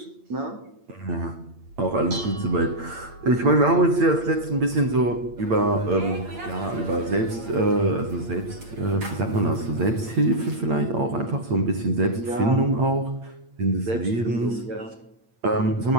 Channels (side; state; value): left; late; 8.7 ms